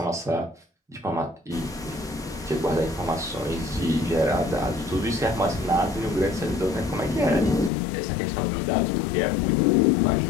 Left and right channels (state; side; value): drops out; right; at 7.7 s